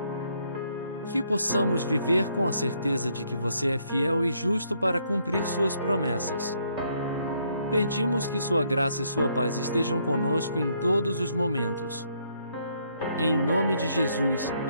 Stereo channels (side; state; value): both; inverted; correlation -0.71